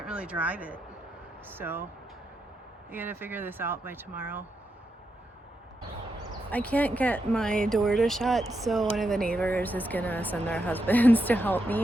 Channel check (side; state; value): both; normal; correlation 0.84